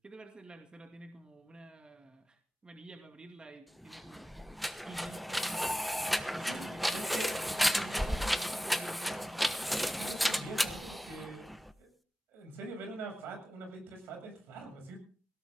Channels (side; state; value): both; normal; correlation 0.95